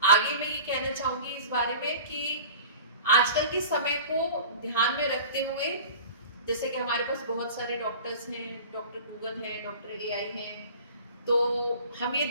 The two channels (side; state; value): both; inverted; correlation -0.40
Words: आगे मैं ये कहना चाहूंगी इस बारे में कि आजकल के समय को ध्यान में रखते हुए, जैसे कि हमारे पास बहुत सारे डॉक्टर्स हैं, डॉक्टर गूगल हैं, डॉक्टर एआई हैं, तो हम ये